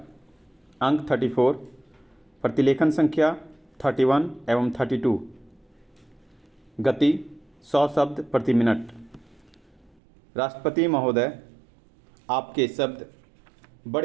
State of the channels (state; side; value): drops out; left; at 10.0 s